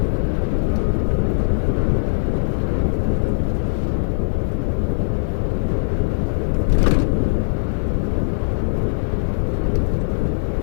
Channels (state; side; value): silent; right; 60 dB below the other